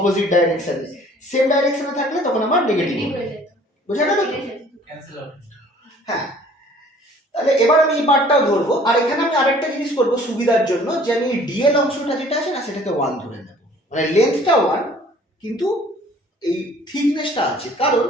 ডাইরেকশনে। সেম ডাইরেকশনে থাকলে তখন আমার নেগেটিভ হবে। বোঝা গেল? হ্যাঁ, তাহলে এবার আমি এই পার্টটাও ধরবো। আর এখানে আমি আরেকটা জিনিস করবো সুবিধার জন্য, যে আমি ডিএল অংশটা যেটা আছে না সেটাকে 1 ধরে নেব, মানে লেন্থটা 1 কিন্তু এই থিকনেসটা আছে। কারণ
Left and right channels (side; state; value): both; normal; correlation 0.53